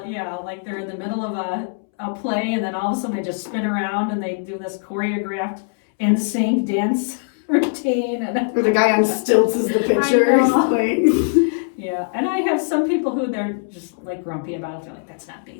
like they're in the middle of a play, and then all of a sudden they just spin around and they do this choreographed in sync dance routine. Or the guy on stilts is the picture. Yeah, and I have some people who they're just like grumpy about it. They're like, that's not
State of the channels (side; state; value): right; silent; 65 dB below the other